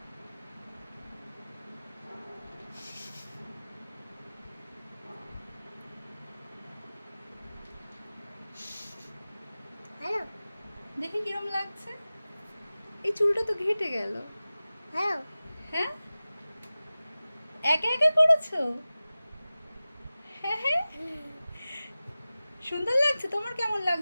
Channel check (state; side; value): inverted; both; correlation -0.97